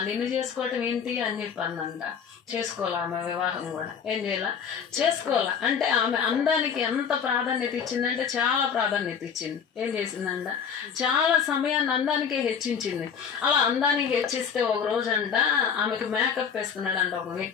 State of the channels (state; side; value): quieter; right; 7.1 dB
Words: నిన్ను చేసుకోవటం ఏంటి అని చెప్పందంట. చేసుకోవాలా ఆమె వివాహం కూడా? ఏం చేయాల? చేసుకోవాలా. అంటే ఆమె అందానికి ఎంత ప్రాధాన్యత ఇచ్చిందంటే చాలా ప్రాధాన్యత ఇచ్చింది. ఏం చేసిందంట, చాలా సమయాన్ని అందానికే హెచ్చించింది. అలా అందానికి హెచ్చిస్తే ఒక రోజు అంట ఆమెకు మేకప్ వేస్తున్నాడంట ఒక